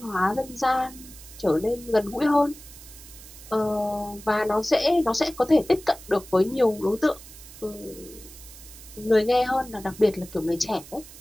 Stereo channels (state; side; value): noise; right; hiss, 18 dB below the sound